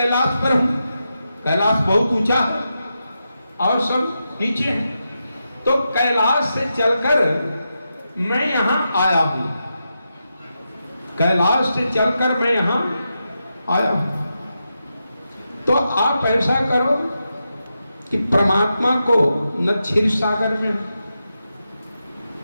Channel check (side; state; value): both; inverted; correlation -0.88